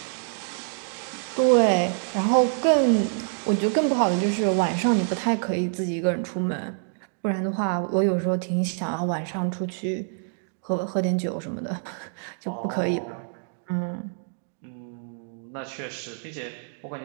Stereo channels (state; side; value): silent; left; digital silence